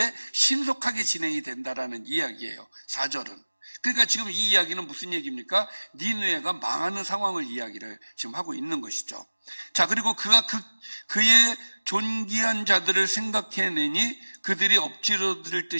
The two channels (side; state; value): both; inverted; correlation -1.00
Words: 신속하게 진행이 된다라는 이야기예요. 4절은. 그러니까 지금 이 이야기는 무슨 얘기입니까? 니느웨가 망하는 상황을 이야기를 지금 하고 있는 것이죠. 자, 그리고 그가 그의 존귀한 자들을 생각해내니 그들이 엎질러들